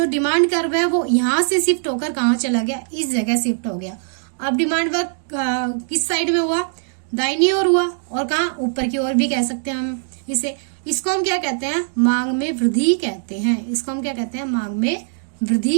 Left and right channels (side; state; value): left; silent; digital silence